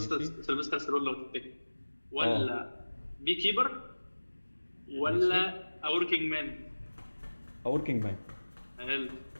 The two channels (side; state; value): both; inverted; correlation -1.00